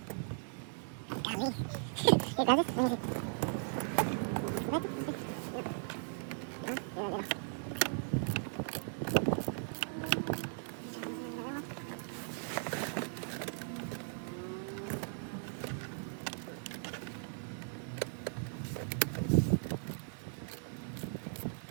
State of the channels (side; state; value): left; silent; digital silence